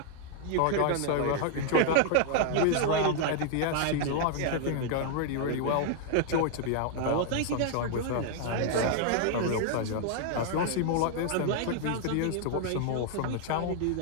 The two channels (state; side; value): different; both; correlation 0.00